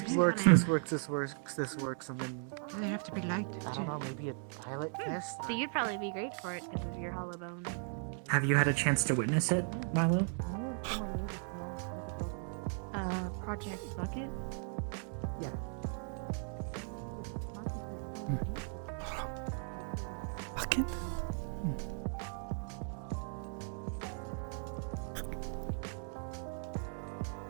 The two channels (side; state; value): left; silent; 53 dB below the other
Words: is for works, someone. this works, this works, this works, and then They have to be light. I don't know, maybe a pilot test. So you'd probably be great for it because of your hollow bone. Have you had a chance to witness it, Milo? Project Bucket? Yeah. Bucket?